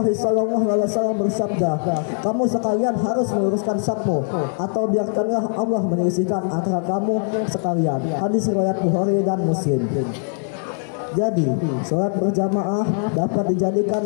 SAW bersabda, kamu sekalian harus meluruskan safmu, atau biarkanlah Allah menyelisihkan antara kamu sekalian." Hadis riwayat Bukhari dan Muslim. Jadi, sholat berjamaah dapat dijadikan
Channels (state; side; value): silent; right; 65 dB below the other